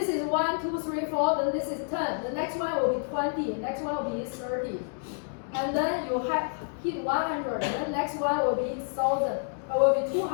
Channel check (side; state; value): right; silent; digital silence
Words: is 1, 2, 3, 4, then this is 10. The next one will be 20, the next one will be 30. And then you have hit 100, and then next one will be 1,000, or will be